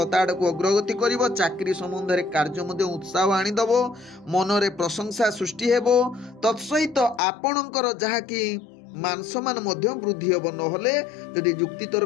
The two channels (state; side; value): drops out; right; at 7.2 s